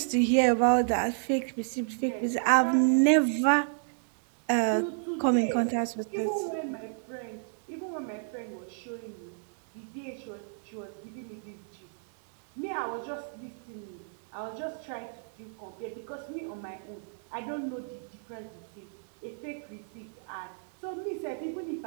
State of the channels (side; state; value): left; silent; 57 dB below the other